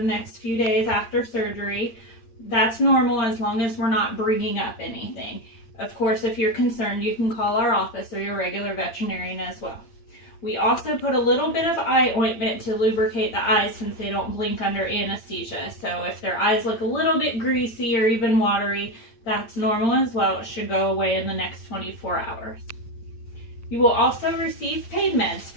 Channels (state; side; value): late; right; 8.7 ms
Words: next few days after surgery. That's normal as long as we're not bringing up anything. Of course, if you're concerned, you can call our office or your regular veterinarian as well. We also put a little bit of eye ointment to lubricate the eyes since they don't blink under anesthesia. So if their eyes look a little bit greasy or even watery, that's normal as well. It should go away in the next 24 hours. You will also receive pain meds